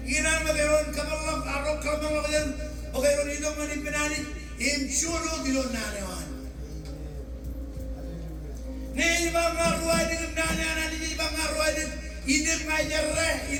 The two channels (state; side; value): identical; both; correlation 1.00